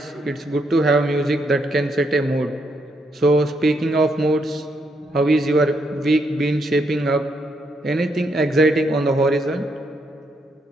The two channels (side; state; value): both; normal; correlation 0.77